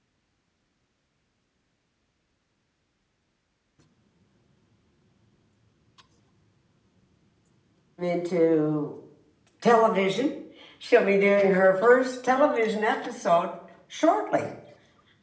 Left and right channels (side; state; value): both; identical; correlation 1.00